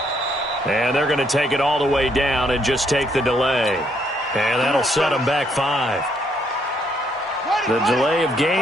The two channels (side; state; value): both; normal; correlation 0.71